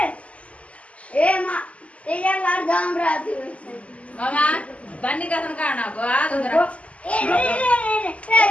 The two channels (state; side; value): late; right; 0.065 ms